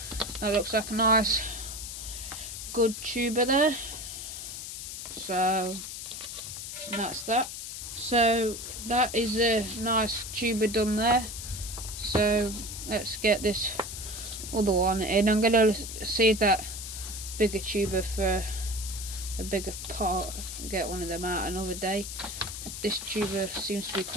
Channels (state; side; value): noise; left; hiss, 8 dB below the sound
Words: That looks like a nice good tuber there. So that's that. So that is a nice tuber done there. So let's get this other one in. I'm going to save that bigger tuber for a bigger part, get one of them out another day. This tuber seems to be